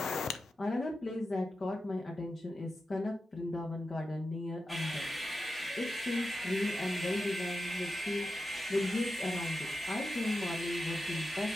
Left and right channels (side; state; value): both; normal; correlation 0.90